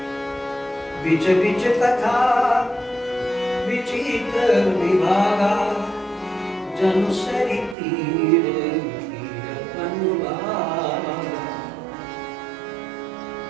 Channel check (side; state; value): left; drops out; at 7.8 s